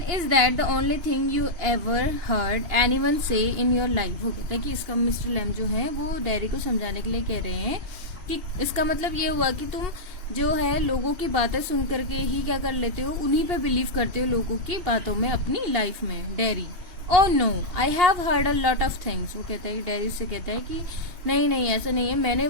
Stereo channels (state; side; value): late; left; 2.8 ms